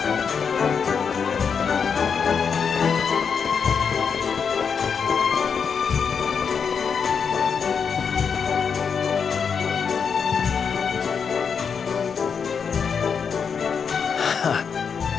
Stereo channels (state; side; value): quieter; right; 6.4 dB